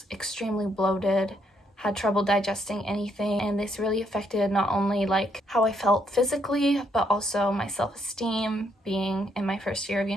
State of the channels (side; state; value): both; normal; correlation 0.73